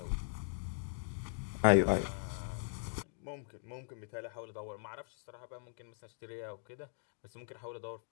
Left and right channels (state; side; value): silent; right; digital silence